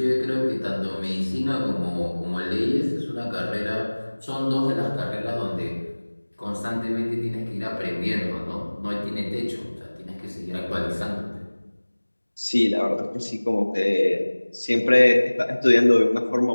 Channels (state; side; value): inverted; both; correlation -1.00